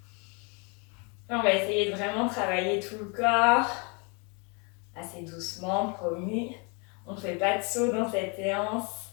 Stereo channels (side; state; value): right; quieter; 33.1 dB